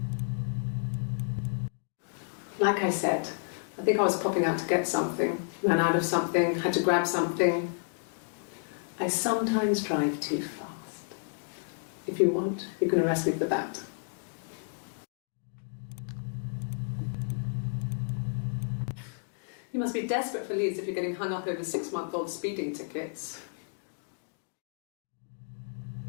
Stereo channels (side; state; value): right; silent; digital silence